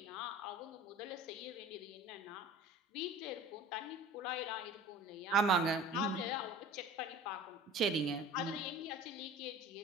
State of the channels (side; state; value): both; normal; correlation 0.41